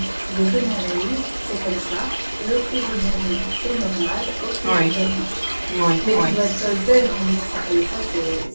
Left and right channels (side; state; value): both; inverted; correlation -1.00